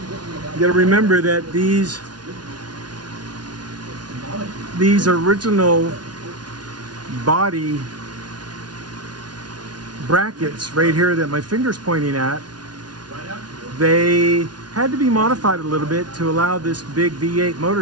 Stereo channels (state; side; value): late; left; 0.69 ms